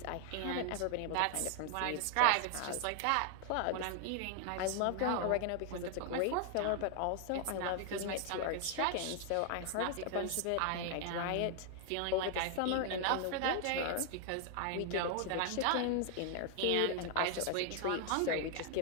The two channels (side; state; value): both; different; correlation 0.00